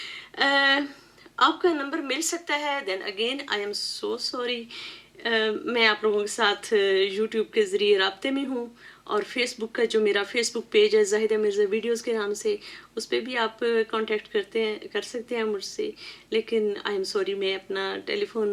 آپ کا نمبر مل سکتا ہے. Then again I am so sorry. میں آپ لوگوں کے ساتھ یوٹیوب کے ذریعے رابطے میں ہوں، اور فیس بک کا جو میرا فیس بک پیج ہے زاہدہ مرزا ویڈیوز کے نام سے، اس پہ بھی آپ کانٹیکٹ کر سکتے ہیں مجھ سے. لیکن آئی ایم سوری، میں اپنا ٹیلی فون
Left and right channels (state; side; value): identical; both; correlation 1.00